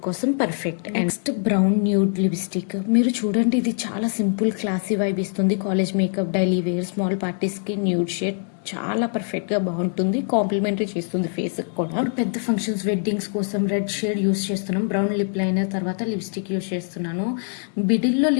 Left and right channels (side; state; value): right; silent; 63 dB below the other